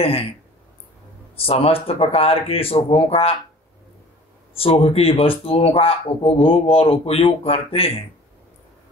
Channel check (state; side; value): normal; both; correlation 0.46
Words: समस्त प्रकार के सुखों का, सुख की वस्तुओं का उपभोग और उपयोग करते हैं।